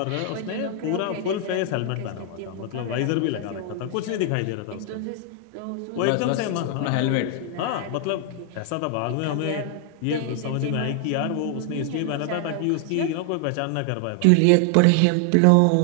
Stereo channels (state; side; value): different; both; correlation 0.00